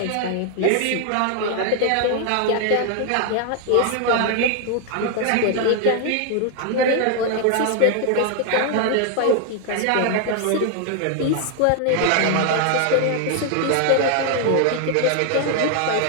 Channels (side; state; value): both; different; correlation 0.00